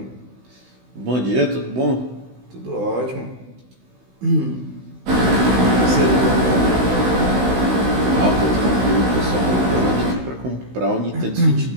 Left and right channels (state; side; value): late; left; 16 ms